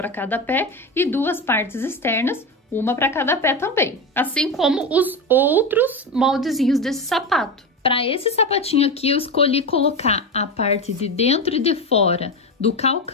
cada pé, e 2 partes externas, uma para cada pé também. Assim como os outros moldezinhos desse sapato. Para esse sapatinho aqui, eu escolhi colocar a parte de dentro e de fora do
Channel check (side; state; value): both; normal; correlation 0.18